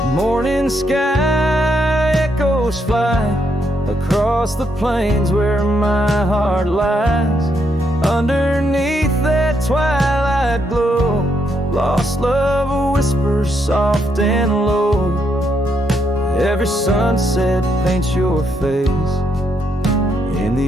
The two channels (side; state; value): both; normal; correlation 0.77